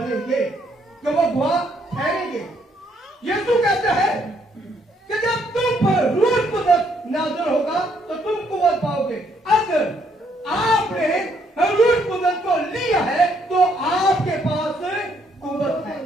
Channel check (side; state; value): both; normal; correlation 0.70